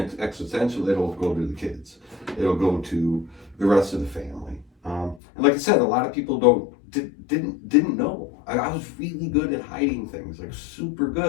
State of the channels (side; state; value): right; drops out; at 5.2 s